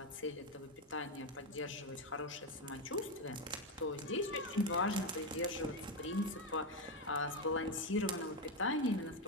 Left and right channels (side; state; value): both; normal; correlation 0.09